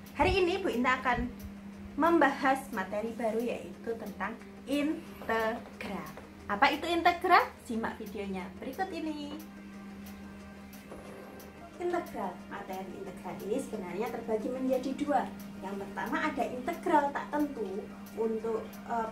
Hari ini Bu Inta akan membahas materi baru, yaitu tentang integral. Apa itu integral? Simak videonya berikut ini. Integral, materi integral ini sebenarnya terbagi menjadi dua. Yang pertama ada integral tak tentu. Untuk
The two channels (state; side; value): identical; both; correlation 1.00